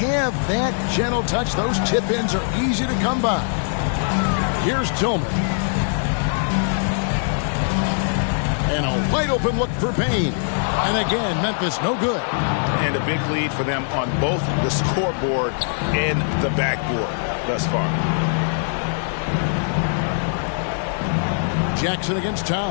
that gentle touch, those tip-ins are easy to come by. Here's Tillman. And a wide open look for Payne. And again, Memphis no good. And a big lead for them on both the scoreboard and the backboard thus far. Jackson against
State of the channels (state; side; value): silent; right; 62 dB below the other